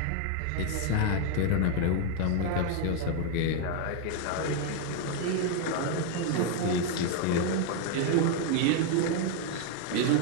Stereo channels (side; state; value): both; different; correlation 0.00